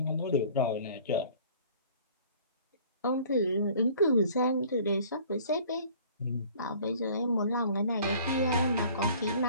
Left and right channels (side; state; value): both; inverted; correlation -0.51